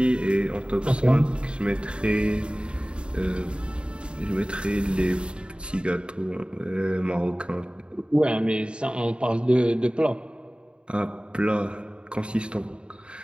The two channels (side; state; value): left; late; 0.053 ms